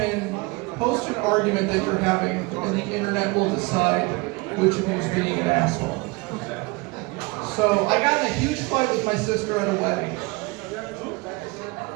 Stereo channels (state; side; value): quieter; left; 25.3 dB